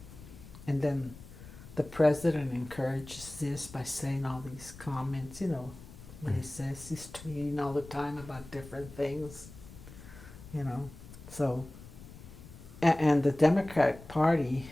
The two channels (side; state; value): left; noise; rumble, 17 dB below the sound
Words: then the president encourages this by saying all these comments, you know, what he says. He's tweeting all the time about different things, you know. So, and the Democratic Party